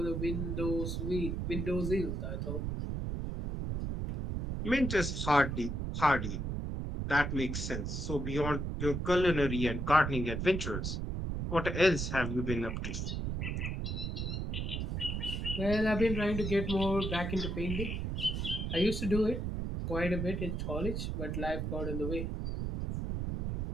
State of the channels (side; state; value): right; noise; rumble, 2 dB below the sound